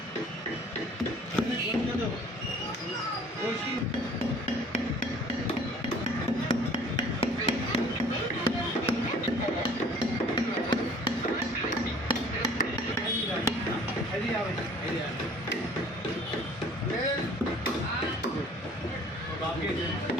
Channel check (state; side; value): normal; both; correlation 0.52